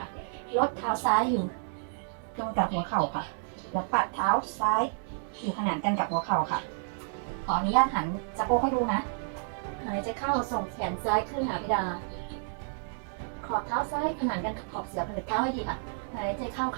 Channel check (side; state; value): left; silent; digital silence